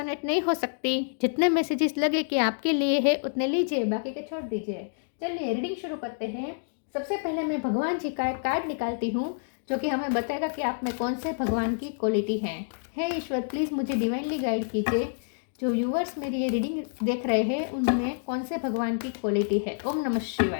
नहीं हो सकती। जितने मैसेजेस लगे कि आपके लिए है उतने लीजिए, बाकी के छोड़ दीजिए। चलिए रीडिंग शुरू करते हैं। सबसे पहले मैं भगवान जी का एक कार्ड निकालती हूँ जो कि हमें बताएगा कि आप में कौन से भगवान की क्वालिटी है। हे ईश्वर, प्लीज़ मुझे डिवाइनली गाइड कीजिए। जो व्यूअर्स मेरी ये रीडिंग देख रहे हैं उनमें कौन से भगवान की क्वालिटी है। ओम नमः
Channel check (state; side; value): silent; right; digital silence